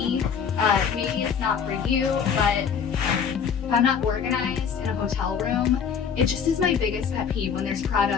Maybe it's not for you, but if I'm not organized in a hotel room It just is my biggest pet peeve when there's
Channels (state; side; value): quieter; right; 7.0 dB